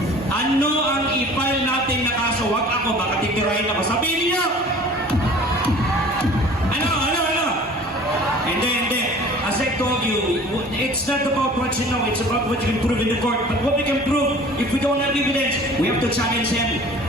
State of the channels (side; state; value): both; normal; correlation 0.46